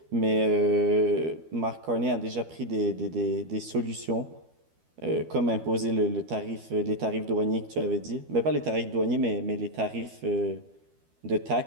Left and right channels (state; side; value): late; left; 12 ms